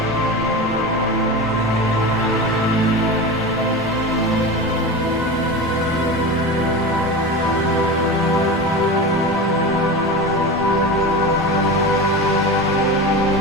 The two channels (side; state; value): both; normal; correlation 0.26